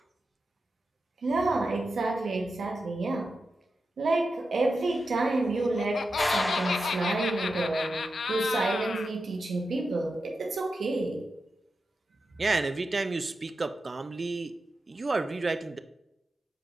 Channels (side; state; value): both; normal; correlation 0.90